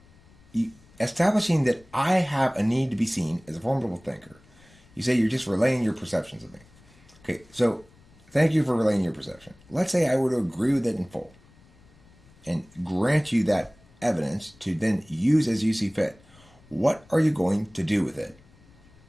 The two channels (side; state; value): left; noise; rumble, 27 dB below the sound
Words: Establishing that I have a need to be seen as a formidable thinker. You say you're just relaying your perceptions of me. Okay, so thank you for relaying your perception. Let's say I were to agree with it in full and grant you that evidence to then use as you see fit. What are you going to do with it?